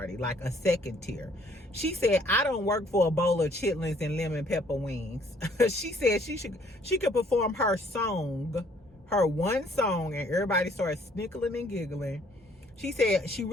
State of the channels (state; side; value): normal; both; correlation 0.62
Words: like a second tier. She said, I don't work for a bowl of chitlins and lemon pepper wings. She said she could perform her song, her one song, and everybody started snickling and giggling. She said she